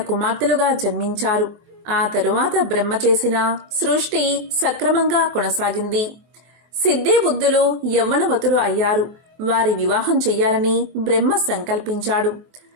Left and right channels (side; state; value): left; late; 23 ms